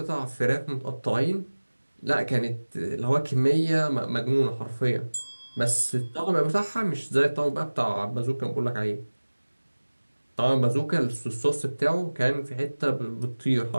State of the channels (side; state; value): both; inverted; correlation -1.00